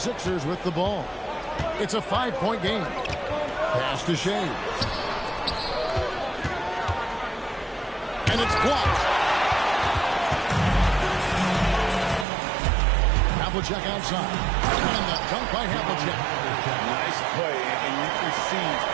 with the ball. It's a 5-point game. Pass to Shea. And it's blocked. Havlicek outside. And the dunk by Havlicek. Nice play, and you can see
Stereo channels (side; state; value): left; drops out; at 12.2 s